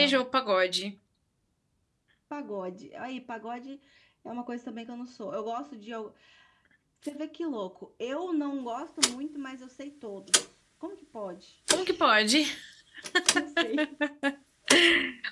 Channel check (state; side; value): identical; both; correlation 1.00